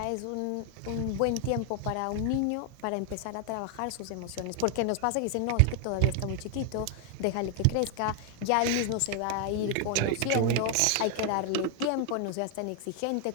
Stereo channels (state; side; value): different; both; correlation 0.00